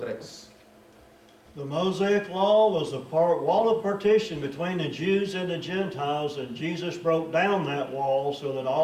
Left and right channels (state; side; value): identical; both; correlation 1.00